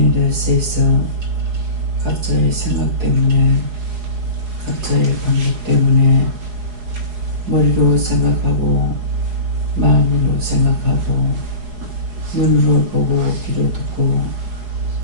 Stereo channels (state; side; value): late; left; 4.8 ms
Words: 대해서 각자의 생각 때문에 각자의 방법 때문에 머리로 생각하고 마음으로 생각하고 눈으로 보고 귀로 듣고